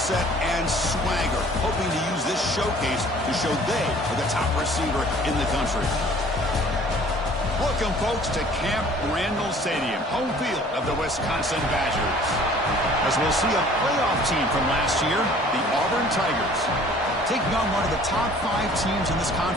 and swagger, hoping to use this showcase to show they are the top receiver in the country. Welcome, folks, to Camp Randall Stadium, home field of the Wisconsin Badgers. As we'll see a playoff team from last year, the Auburn Tigers, taking on one of the top 5 teams in this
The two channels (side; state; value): both; normal; correlation 0.52